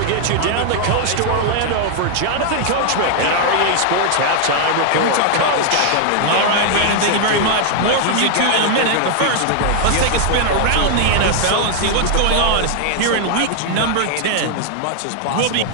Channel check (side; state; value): both; different; correlation 0.00